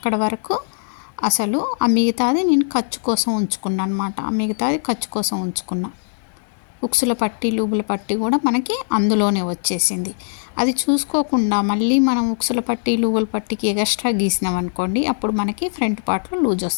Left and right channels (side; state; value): right; silent; digital silence